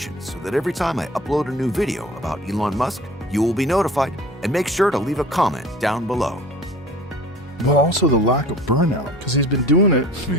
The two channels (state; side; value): normal; both; correlation 0.44